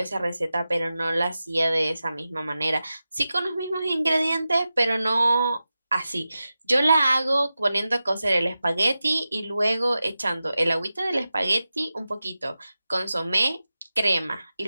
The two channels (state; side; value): inverted; both; correlation -0.93